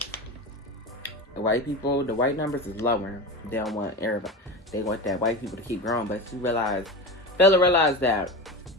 The white numbers is lower. They don't want everybody. They want that white people to keep growing, but you realize that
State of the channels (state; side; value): normal; both; correlation 0.25